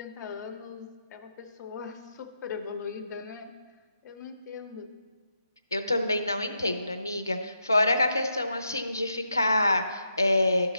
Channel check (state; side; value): inverted; both; correlation -0.83